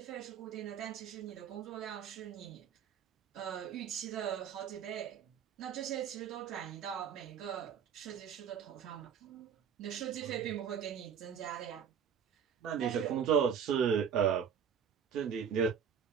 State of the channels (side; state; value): left; quieter; 7.8 dB